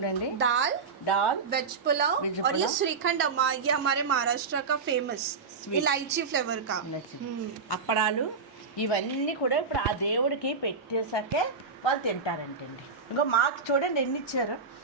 दाल, दाल, वेज पुलाव Veg और ये पुलाव. श्रीखंड अम्मा ये हमारे महाराष्ट्र का फेमस Sweet. इलायची फ्लेवर का. అప్పడాలు ఇవన్నీ కూడా ఇప్పుడు ఆ దేవుడికి పెట్టేసాకే వాళ్ళు తింటారంటండి. ఇంకో మాకు చూడండి ఎన్ని ఇచ్చారు.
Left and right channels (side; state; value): left; quieter; 4.9 dB